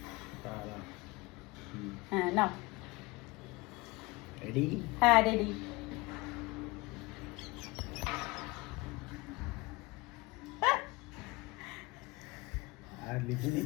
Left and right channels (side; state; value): right; quieter; 23.6 dB